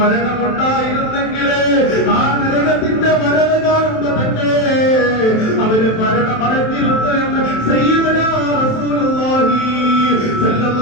ആ നരകത്തിന്റെ വരവ് കാണുമ്പോ തന്നെ അവര് മരണമടഞ്ഞിരുന്നു എന്ന് സയ്യിദുനാ റസൂലുള്ളാഹി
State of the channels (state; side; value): late; right; 27 ms